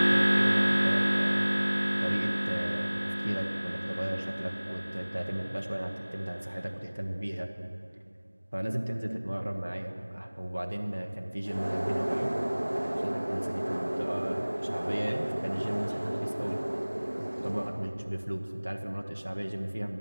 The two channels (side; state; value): both; inverted; correlation -1.00